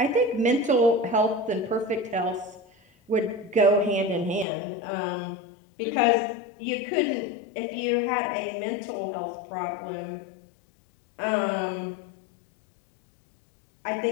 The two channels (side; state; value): right; drops out; at 4.5 s